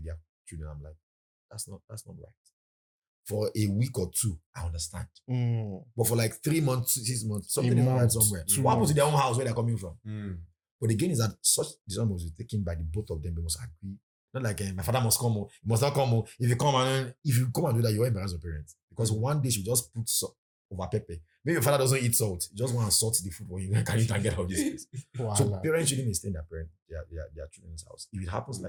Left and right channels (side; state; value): both; identical; correlation 1.00